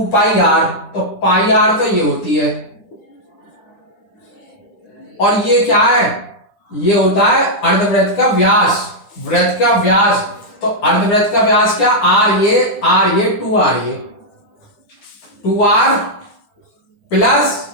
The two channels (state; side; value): late; right; 9.9 ms